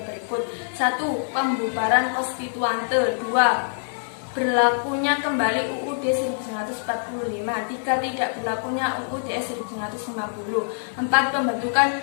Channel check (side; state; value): right; silent; digital silence